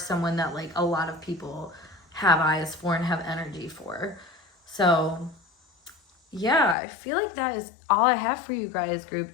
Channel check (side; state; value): right; drops out; at 6.8 s